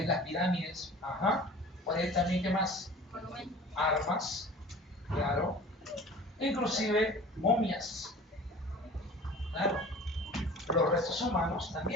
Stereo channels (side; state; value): both; normal; correlation 0.43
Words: las pirámides. Ajá. Por ahí también, ¿qué más? Armas, claro. Inclusive momias. Claro. Los restos humanos